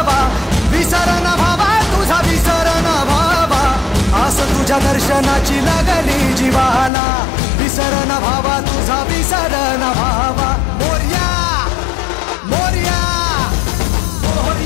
विसर न भावा तुझा विसर न भावा. आस तुझ्या दर्शनाची लागली जीवाला, विसर न भावा तुझा विसर न भावा. मोरया मोरया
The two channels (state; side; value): drops out; right; at 6.9 s